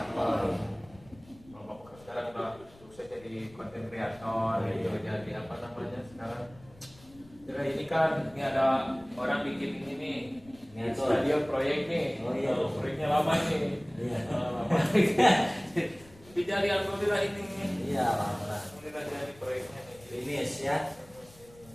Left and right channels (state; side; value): noise; left; rumble, 24 dB below the sound